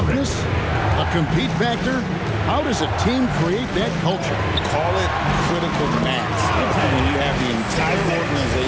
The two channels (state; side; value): identical; both; correlation 1.00